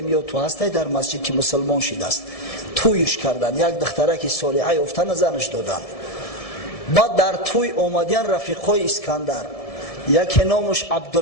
یا تو هستی در مسجد که مسلمان شده است، تویش کردن. یک دختره که صالحه افتن زنش دادن. بعد در توی اومدن رفیقای اسکندر، یکی نامش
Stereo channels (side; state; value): right; late; 1.7 ms